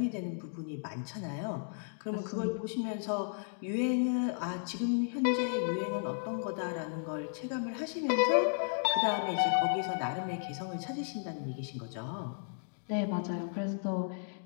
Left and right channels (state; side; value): silent; right; digital silence